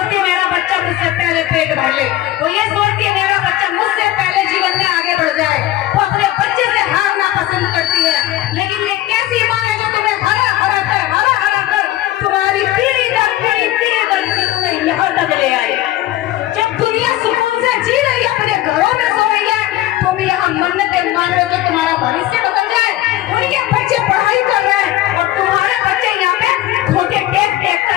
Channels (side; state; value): right; quieter; 14.9 dB